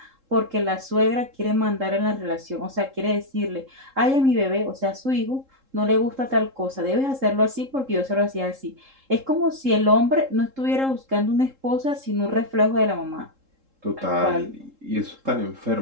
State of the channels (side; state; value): left; late; 3.7 ms